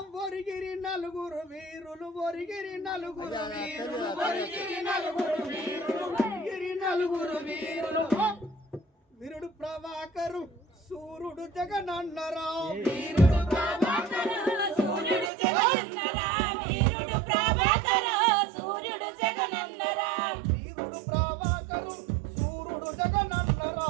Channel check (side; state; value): left; drops out; at 15.3 s